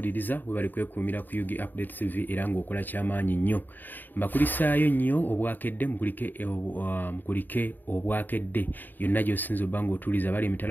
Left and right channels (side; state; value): right; late; 0.090 ms